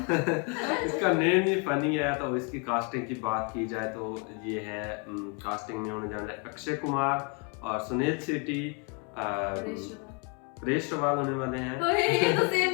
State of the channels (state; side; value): quieter; right; 35.5 dB